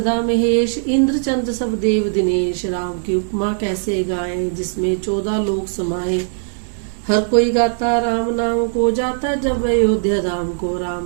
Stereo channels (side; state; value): left; silent; digital silence